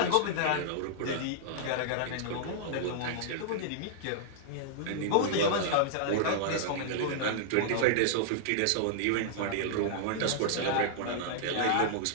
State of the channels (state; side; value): different; both; correlation -0.01